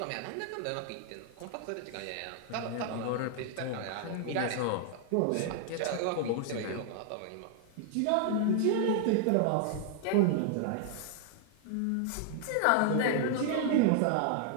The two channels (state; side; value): different; both; correlation 0.00